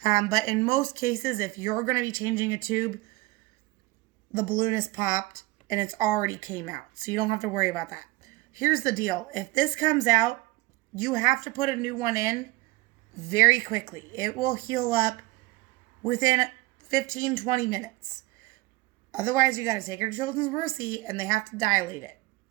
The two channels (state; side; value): quieter; left; 21.0 dB